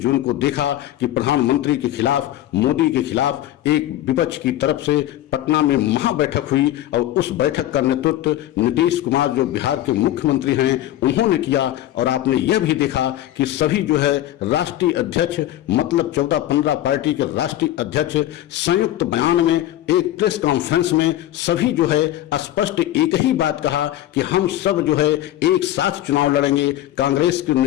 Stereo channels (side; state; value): right; quieter; 13.5 dB